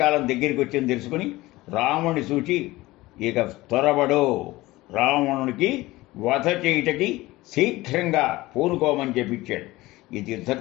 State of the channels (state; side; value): quieter; right; 19.1 dB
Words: దగ్గరికి వచ్చింది తెలుసుకుని రాముని సూచి ఇక త్వరబడు, రావణునికి వధ చేయుటకి శీఘ్రంగా పూనుకోమని చెప్పించాడు. ఈ